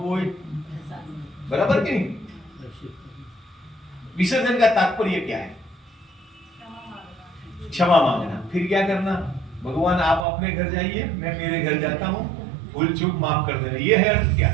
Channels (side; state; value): left; drops out; at 10.2 s